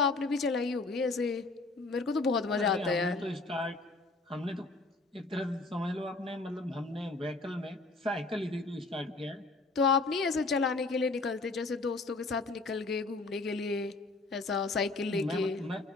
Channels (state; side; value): quieter; right; 3.5 dB